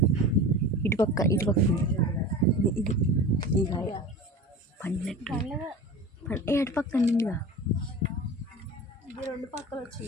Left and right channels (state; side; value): normal; both; correlation 0.34